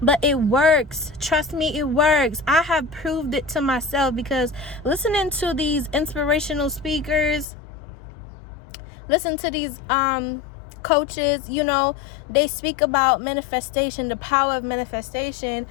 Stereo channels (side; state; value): right; drops out; at 7.5 s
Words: but it works. Trust me, it works. I have proved it to myself, because listening to these inspirational speakers, listen to these coaches, they speak about manifestation, the power of manifestation,